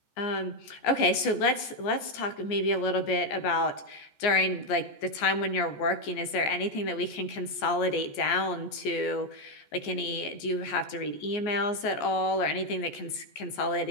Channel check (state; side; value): late; right; 14 ms